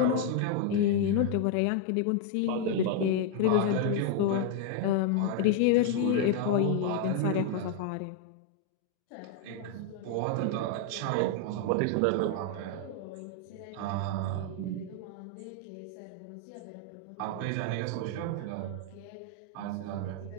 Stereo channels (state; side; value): different; both; correlation 0.00